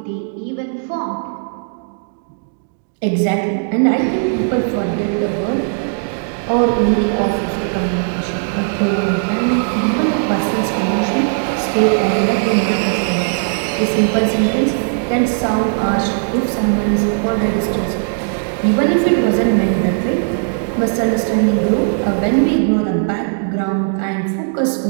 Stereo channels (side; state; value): left; silent; digital silence